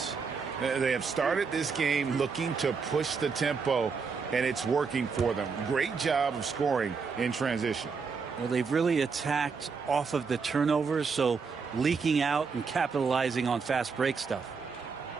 They have started this game looking to push the tempo, and it's working for them. Great job of scoring in transition. Well, they've really attacked off of the turnovers, so leaking out and capitalizing on fast break stuff.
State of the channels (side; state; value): left; quieter; 5.3 dB